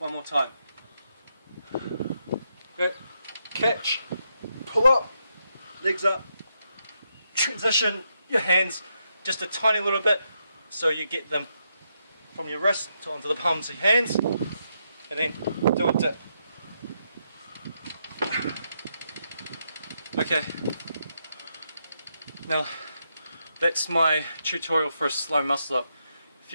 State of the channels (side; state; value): both; inverted; correlation -0.81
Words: more time. Okay, catch, pull up, legs up, transition your hands just a tiny little bit so you get them from your wrist to onto the palms of your hands, and then do a dip. Okay, now that's my tutorial for a slow muscle up. If